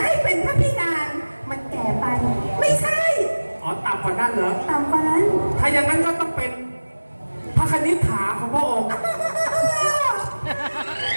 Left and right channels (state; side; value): inverted; both; correlation -1.00